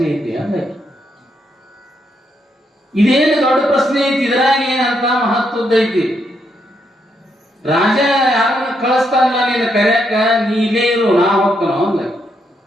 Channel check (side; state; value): both; normal; correlation 0.78